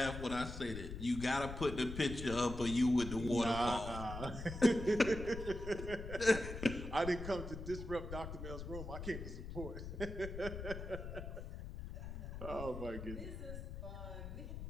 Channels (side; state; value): left; noise; rumble, 8 dB below the sound